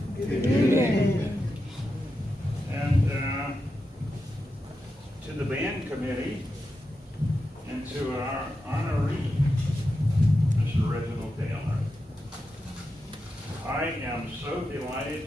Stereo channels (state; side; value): normal; both; correlation 0.88